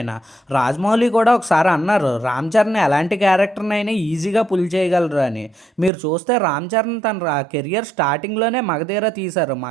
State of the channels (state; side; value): drops out; left; at 5.9 s